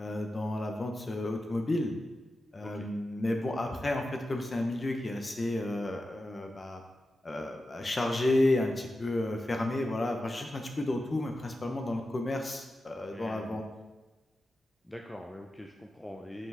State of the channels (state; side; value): normal; both; correlation 0.92